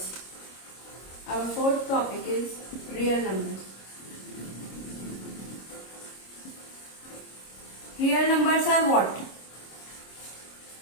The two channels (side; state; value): right; late; 26 ms